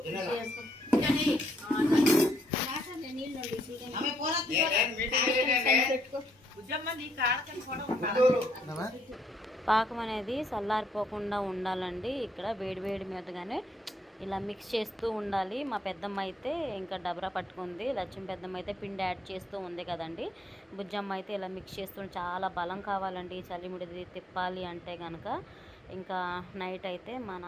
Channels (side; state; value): both; normal; correlation 0.72